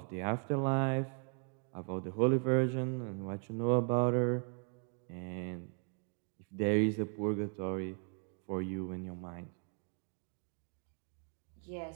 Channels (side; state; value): left; quieter; 39.4 dB